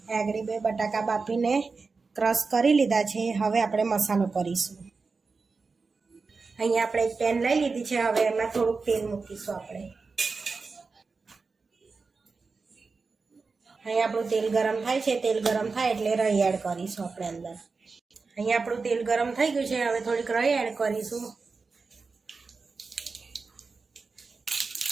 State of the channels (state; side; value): quieter; left; 4.4 dB